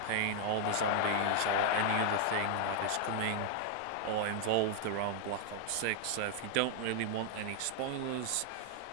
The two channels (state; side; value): different; both; correlation 0.00